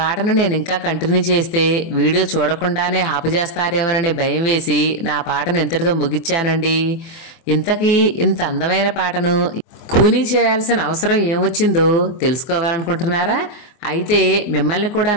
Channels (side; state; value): right; late; 24 ms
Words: నేను ఇంకా కంటిన్యూ చేస్తే వీడియో చూడకుండానే ఆపుచేస్తారేమోననే భయం వేసి నా పాటను ఇంతటితో ముగిచ్చానండి. ఇంతకీ ఇంత అందమైన పాటను కూనీ చేయాల్సిన అవసరం ఏమొచ్చిందో తెలుసుకోవాలనుకుంటున్నారా? అయితే మిమ్మల్ని కూడా